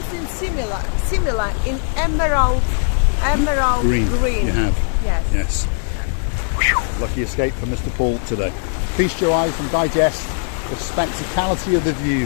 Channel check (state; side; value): silent; right; 66 dB below the other